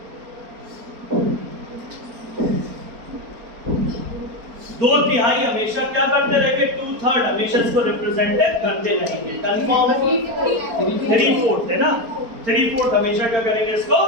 दो तिहाई हमेशा क्या करते रहेंगे, 2/3 हमेशा इसको रिप्रेजेंट करते रहेंगे। कंफर्म है, 3/4 है ना, 3/4 हमेशा क्या करेंगे, इसको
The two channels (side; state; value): left; late; 4.4 ms